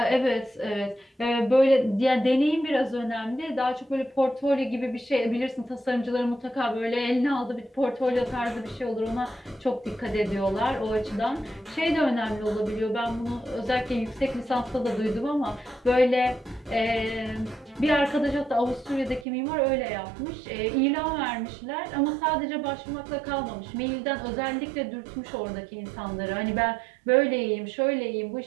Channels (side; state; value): left; drops out; at 19.2 s